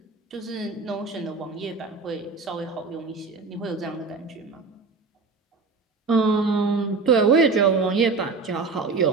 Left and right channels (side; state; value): left; quieter; 4.3 dB